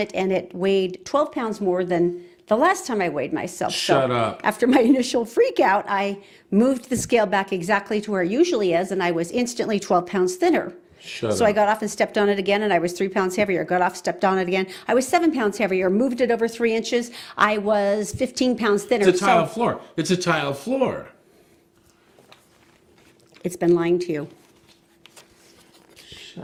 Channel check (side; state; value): both; identical; correlation 1.00